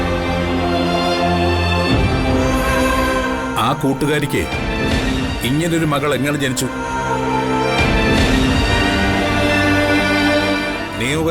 ആ കൂട്ടുകാരിക്ക് ഇങ്ങനൊരു മകൾ എങ്ങനെ ജനിച്ചു?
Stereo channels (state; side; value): identical; both; correlation 1.00